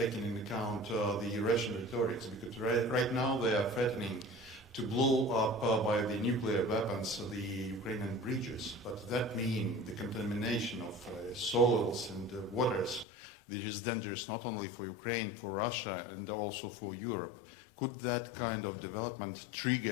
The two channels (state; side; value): drops out; right; at 13.1 s